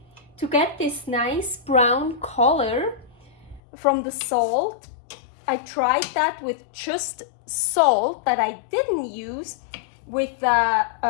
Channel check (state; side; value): drops out; right; at 3.6 s